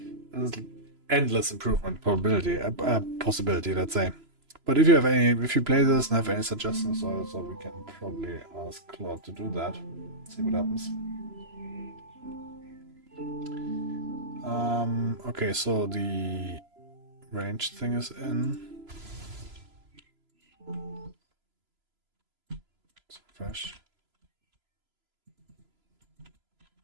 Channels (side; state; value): left; late; 3.0 ms